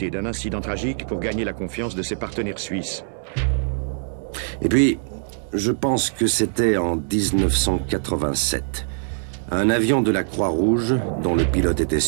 d'un incident tragique pour gagner la confiance de ses partenaires suisses. Et puis, je pense que c'était en 1987. Un avion de la Croix-Rouge, dont le pilote était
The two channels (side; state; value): left; silent; 59 dB below the other